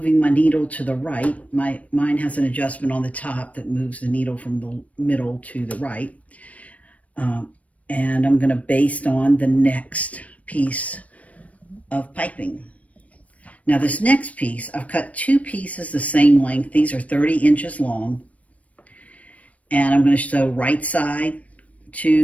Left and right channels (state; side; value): late; right; 0.067 ms